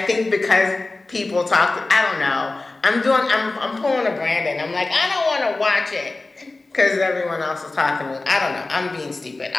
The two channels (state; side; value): quieter; right; 3.2 dB